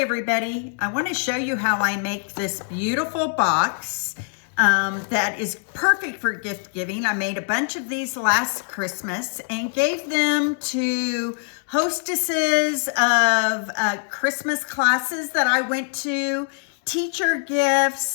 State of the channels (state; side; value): silent; right; 63 dB below the other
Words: everybody, I want to show you how I make this beautiful box that is perfect for gift giving. I made a bunch of these last Christmas and gave them to hostesses of Christmas classes that I went to, teacher